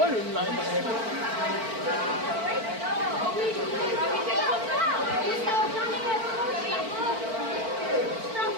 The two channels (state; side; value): late; left; 4.5 ms